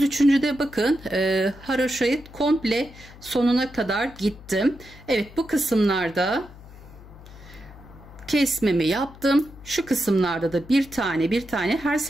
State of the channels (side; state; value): left; noise; hum, 19 dB below the sound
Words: de bakın haroşayı komple sonuna kadar gittim. Evet, bu kısımlarda kesmemi yaptım. Şu kısımlarda da bir tane her